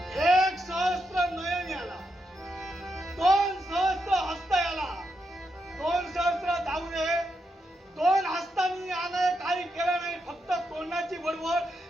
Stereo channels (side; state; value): both; normal; correlation 0.83